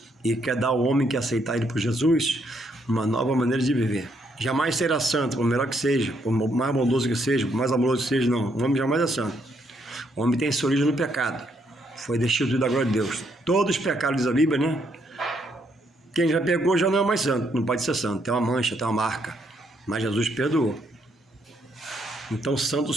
e quer dar ao homem que aceitar Ele por Jesus uma nova maneira de viver. Jamais será santo, por melhor que seja, por mais bondoso que seja, por mais amoroso que seja, não. O homem jamais é santo. O homem tem sua origem no pecado. Foi destituído da glória de Deus. Todos os pecados, diz a Bíblia, né? Quem já pegou já não é mais santo, não pode ser santo. Tem uma mancha, tem uma marca. Mas Jesus perdoou. Então, santo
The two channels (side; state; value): both; normal; correlation 0.73